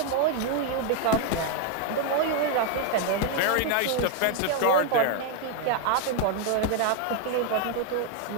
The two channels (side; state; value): both; different; correlation 0.01